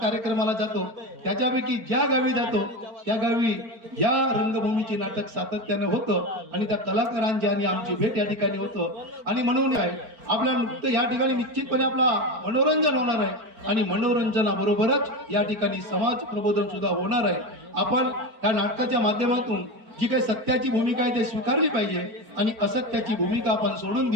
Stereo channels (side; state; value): left; late; 4.4 ms